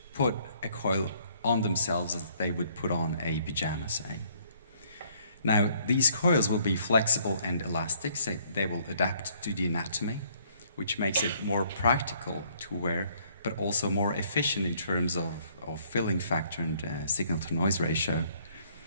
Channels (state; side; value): inverted; both; correlation -0.63